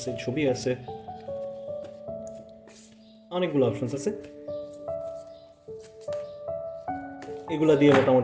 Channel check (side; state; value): both; identical; correlation 1.00